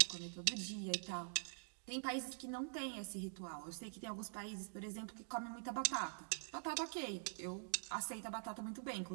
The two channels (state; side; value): silent; left; digital silence